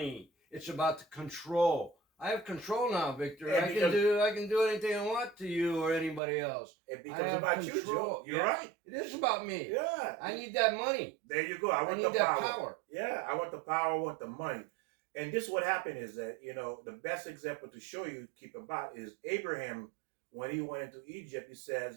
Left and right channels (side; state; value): left; drops out; at 6.2 s